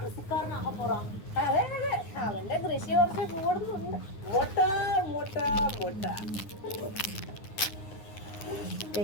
போறான். അതെ അതെ, അവന്റെ കൃഷി കുറച്ച് കൂടുന്നുണ്ട്. മുട്ട മുട്ട മുട്ട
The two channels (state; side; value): late; right; 9.5 ms